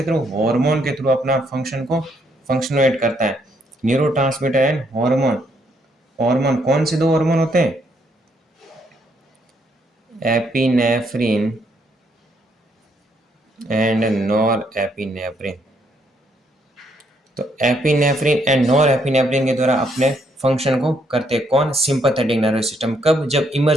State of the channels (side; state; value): both; normal; correlation 0.72